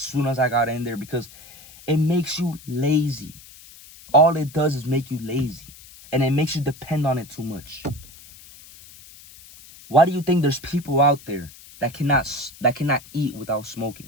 as I got in there because it makes you lazy. All it does is make you lazy, and it makes you depend on it too much. Why do you think there's people out there that cannot eat without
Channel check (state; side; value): noise; left; hiss, 20 dB below the sound